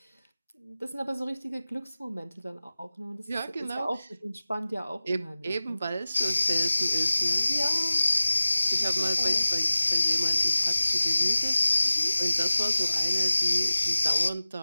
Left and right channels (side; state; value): both; inverted; correlation -0.97